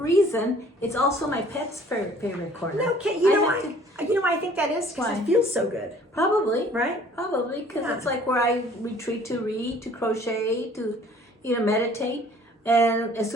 it's also my pet's favorite corner. No, you know why I think that is? Because it feels so good. Probably. Right? Probably, because it's like where I retreat to read, to crochet, to meditate. And as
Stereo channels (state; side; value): normal; both; correlation 0.54